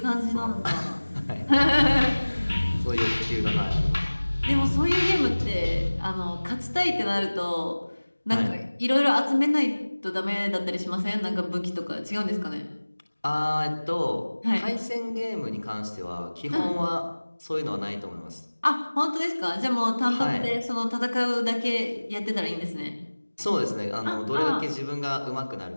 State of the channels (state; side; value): inverted; both; correlation -1.00